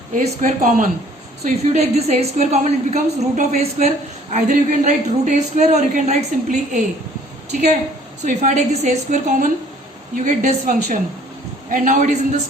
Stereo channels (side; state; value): both; normal; correlation 0.56